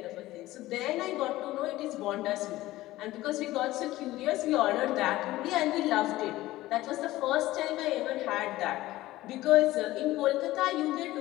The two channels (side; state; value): right; quieter; 16.8 dB